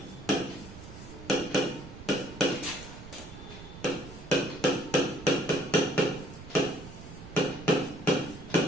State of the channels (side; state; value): right; noise; rumble, 15 dB below the sound